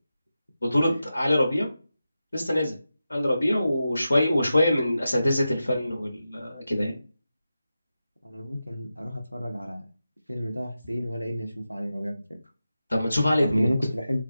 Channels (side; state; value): both; inverted; correlation -0.91